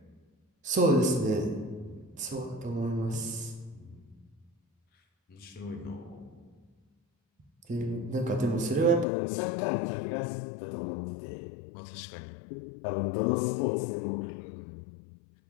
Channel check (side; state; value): right; drops out; at 9.1 s